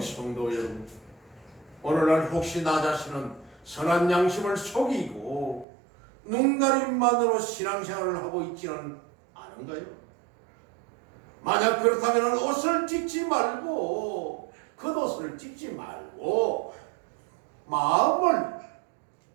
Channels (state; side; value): drops out; left; at 5.7 s